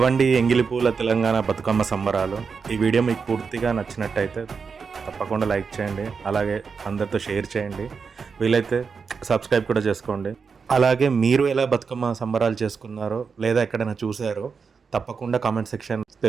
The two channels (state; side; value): quieter; left; 5.5 dB